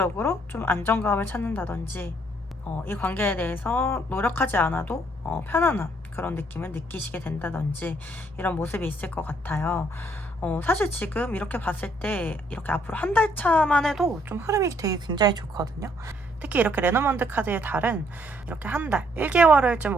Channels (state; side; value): normal; both; correlation 0.68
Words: 좀 안정감을 찾는다든지, 이 관계에 대해서 노력하지 않아도 편안한 그런 느낌을 느끼시게 된다든지, 이런 모습이 있을 것 같아요. 사실 지금 이렇게 봤을 때 이렇게 앞으로 한 달 차만 해도 좀 흐름이 되게 굉장히 좋거든요. 특히 이렇게 레노먼드 카드의 달은 이렇게 한 달, 1개월을